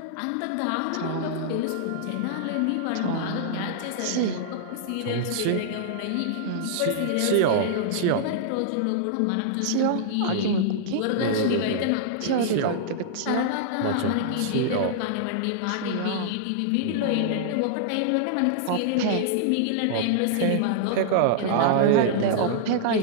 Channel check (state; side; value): different; both; correlation -0.01